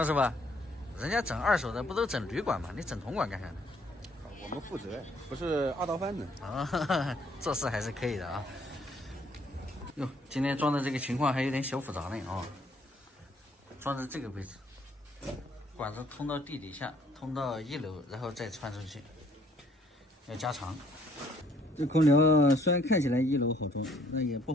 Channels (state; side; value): normal; both; correlation 0.63